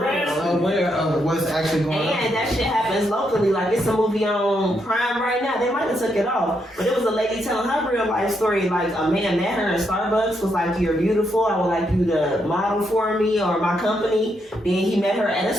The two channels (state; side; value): normal; both; correlation 0.79